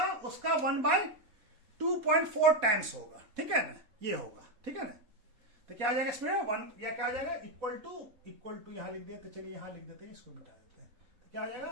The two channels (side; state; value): left; late; 4.2 ms